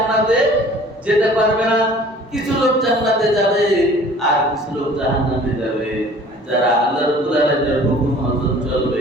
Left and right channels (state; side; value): normal; both; correlation 0.49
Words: যেতে পারবে না। কিছু লোক জান্নাতে যাবে আর কিছু লোক জাহান্নামে যাবে, যারা আল্লাহ রাব্বুল আলামিনের হুকুম মতো